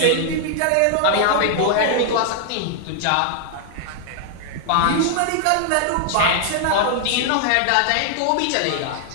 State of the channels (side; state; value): both; different; correlation 0.00